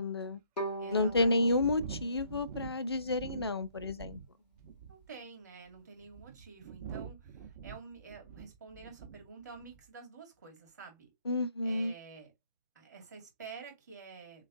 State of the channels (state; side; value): inverted; both; correlation -0.65